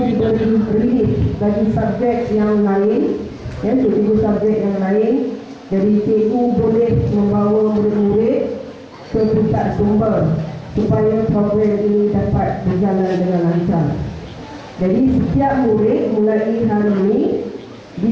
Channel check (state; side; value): identical; both; correlation 1.00